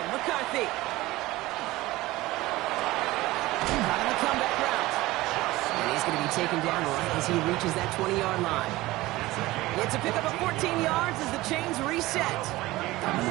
McCarthy. Caught on the comeback route. And he's going to be taken down right as he reaches that 20-yard line. It's a pickup of 14 yards as the chains reset. Coming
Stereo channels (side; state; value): left; quieter; 18.6 dB